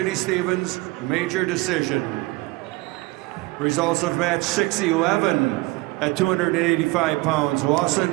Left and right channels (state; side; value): quieter; left; 22.6 dB